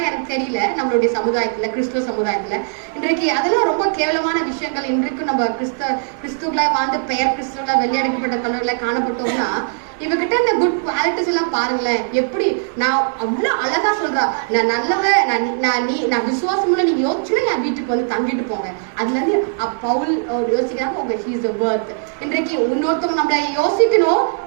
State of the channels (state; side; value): silent; left; 66 dB below the other